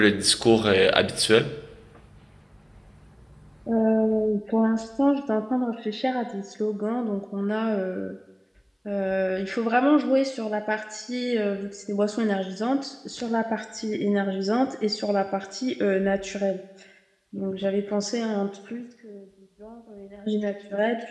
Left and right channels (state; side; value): identical; both; correlation 1.00